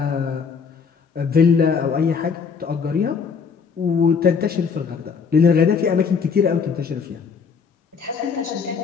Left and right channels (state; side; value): quieter; right; 5.9 dB